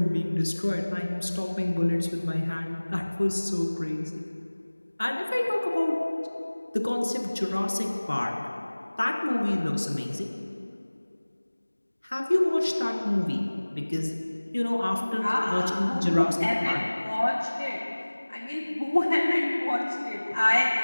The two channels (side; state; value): both; inverted; correlation -1.00